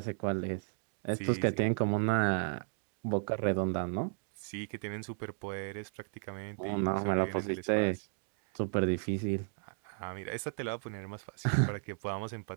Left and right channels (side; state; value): left; silent; 55 dB below the other